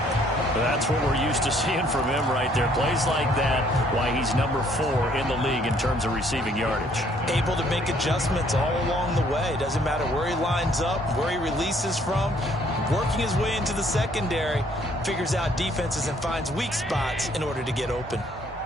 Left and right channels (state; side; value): normal; both; correlation 0.63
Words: That's what we're used to seeing from him right there. Plays like that, why he's #4 in the league in terms of receiving yardage. Able to make adjustments all along the way. Doesn't matter where he lines up, where he releases from. Working his way into the secondary, figures out defenses and finds weak spots in order to get open.